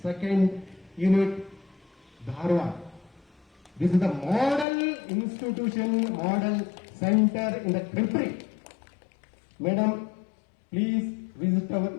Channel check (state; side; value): drops out; right; at 4.7 s